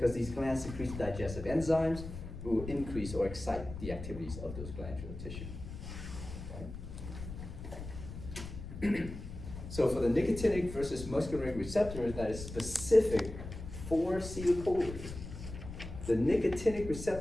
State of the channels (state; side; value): noise; left; rumble, 10 dB below the sound